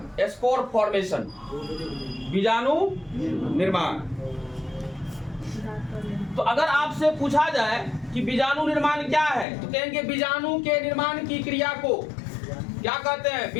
एस्पोर फॉर्मेशन, बीजाणु निर्माण। तो अगर आपसे पूछा जाए कि बीजाणु निर्माण क्या है, तो कहेंगे बीजाणु के निर्माण की क्रिया को क्या कहते हैं?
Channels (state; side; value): drops out; right; at 9.5 s